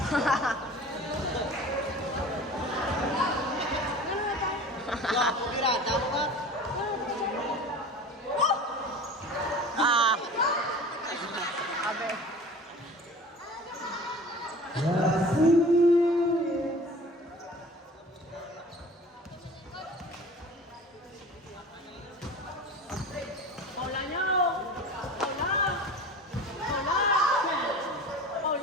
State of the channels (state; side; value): normal; both; correlation 0.40